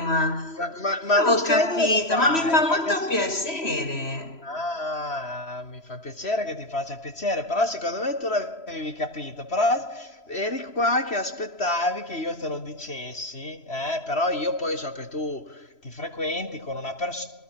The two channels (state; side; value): late; right; 3.0 ms